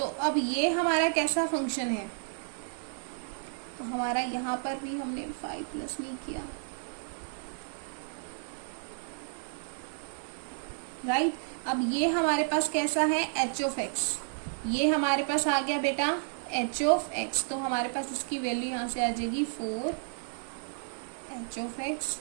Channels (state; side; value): silent; left; 57 dB below the other